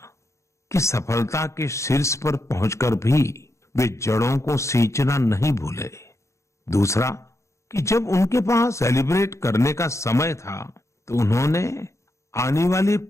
कि सफलता के शीर्ष पर पहुंचकर भी वे जड़ों को सींचना नहीं भूले। दूसरा कि जब उनके पास सेलिब्रेट करने का समय था तो उन्होंने आने वाली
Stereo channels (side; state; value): right; late; 0.14 ms